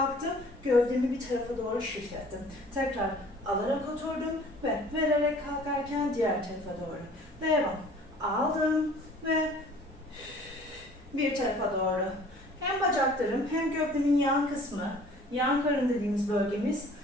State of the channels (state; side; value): normal; both; correlation 0.50